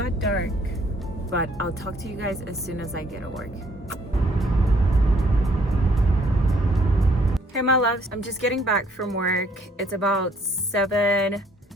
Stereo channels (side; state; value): both; normal; correlation 0.64